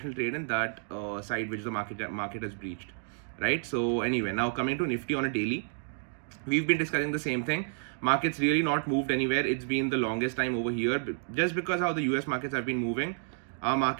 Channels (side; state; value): left; silent; digital silence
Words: trade in that side which the market has breached, right? So anyway, now coming to Nifty on a daily, we've been discussing the same thing. Markets really not moved anywhere. It's been the longest time over here, just because how the US markets have been moving. Our